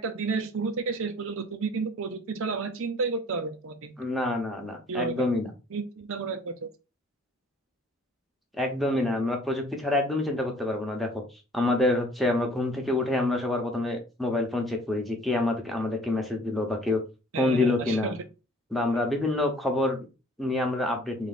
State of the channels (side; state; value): both; normal; correlation 0.53